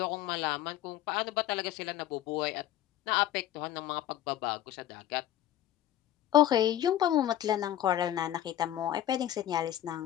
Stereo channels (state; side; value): quieter; right; 12.2 dB